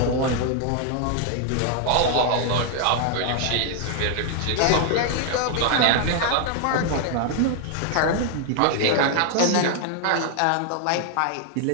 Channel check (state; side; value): different; both; correlation 0.00